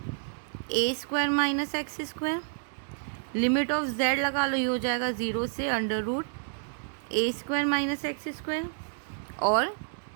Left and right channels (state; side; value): silent; left; digital silence